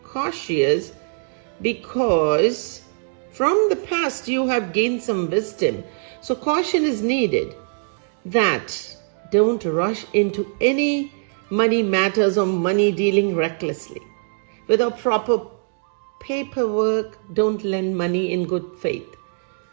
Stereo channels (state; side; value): silent; left; digital silence